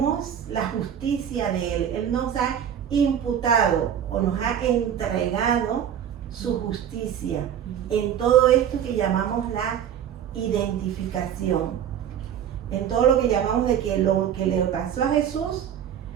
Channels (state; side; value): quieter; left; 9.3 dB